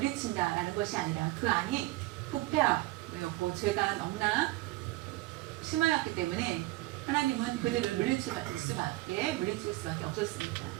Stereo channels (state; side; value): quieter; left; 19.9 dB